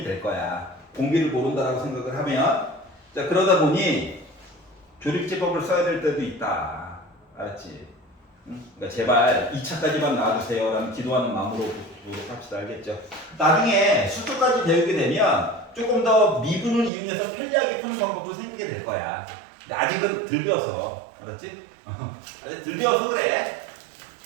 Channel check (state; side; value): drops out; left; at 16.9 s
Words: 될 거야. 공비를 모른다라고 생각을 하면. 자, 그러다 보니 조립제법을 써야 될 때도 있다. 알았지? 응? 그러니까 제발 2차까지만 나와주세요 라는 기도하는 마음으로 보도록 합시다. 알겠죠? 나중에 수투까지 배우게 되면 조금 더 미분을 이용해서 편리하게 푸는 방법도 생기게 될 거야. 근데 아직은 덜 배워서. 알았지? 아직 덜 배워서 그래.